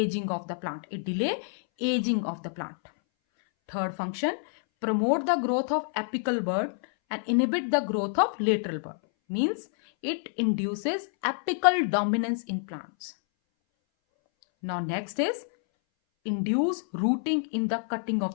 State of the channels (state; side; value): silent; right; 59 dB below the other